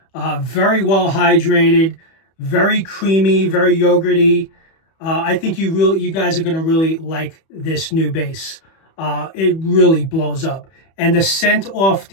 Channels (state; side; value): late; right; 31 ms